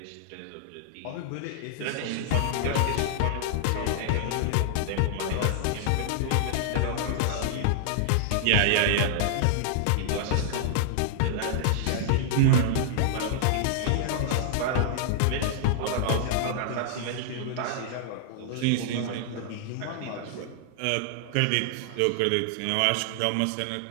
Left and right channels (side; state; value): both; different; correlation -0.01